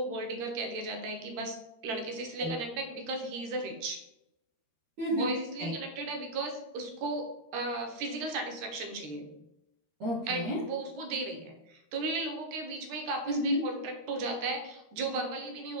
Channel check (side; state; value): left; late; 13 ms